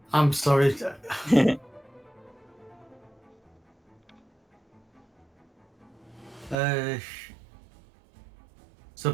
I'm sorry. So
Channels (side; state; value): left; drops out; at 6.6 s